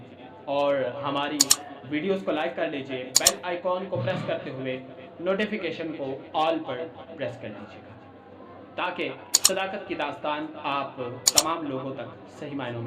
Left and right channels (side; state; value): both; identical; correlation 1.00